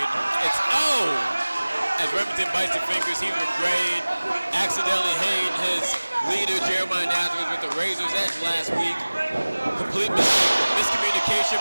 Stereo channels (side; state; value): both; inverted; correlation -1.00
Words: it's as Remington bites the fingers, he's regretting accidentally hitting his leader Jeremiah Nazareth with the razor's edge last week. Complete miscommunication